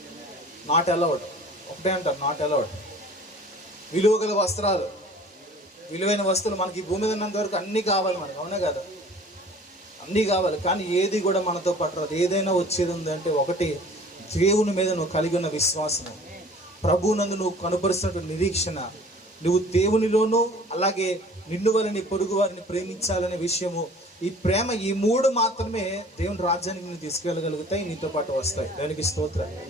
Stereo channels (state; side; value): normal; both; correlation 0.48